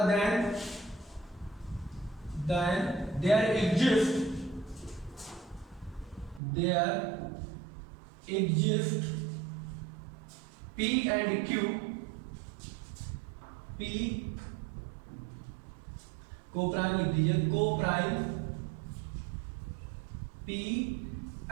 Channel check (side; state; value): left; drops out; at 6.4 s